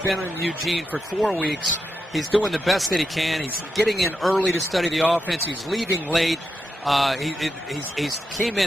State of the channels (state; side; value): normal; both; correlation 0.86